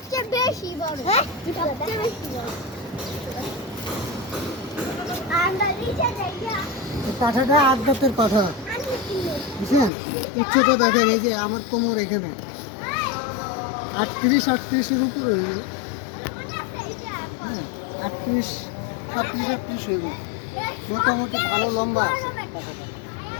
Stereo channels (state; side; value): drops out; right; at 9.9 s